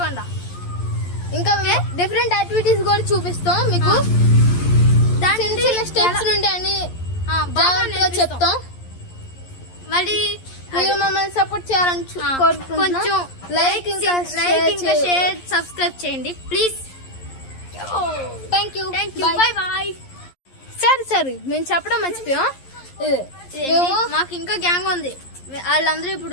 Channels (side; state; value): right; late; 11 ms